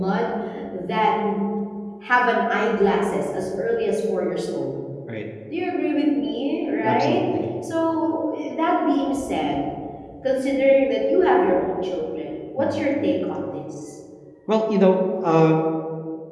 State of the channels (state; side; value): identical; both; correlation 1.00